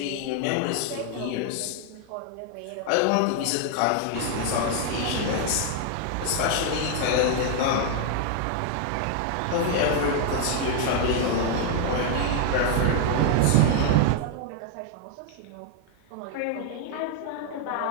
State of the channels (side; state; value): both; different; correlation 0.00